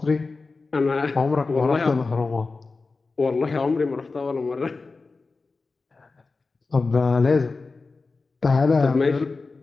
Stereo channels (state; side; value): quieter; right; 4.0 dB